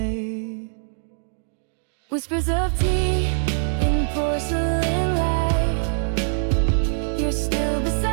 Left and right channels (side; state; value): left; silent; digital silence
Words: Whispers of tea in porcelain